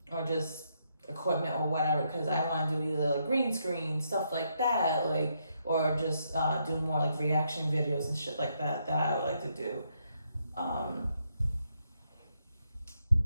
or just equipment or whatever. Because I want to do either, like, green screen stuff like that, like, or just do more, like, reaction videos and shit like that. That I would like to do.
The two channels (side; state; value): both; inverted; correlation -0.78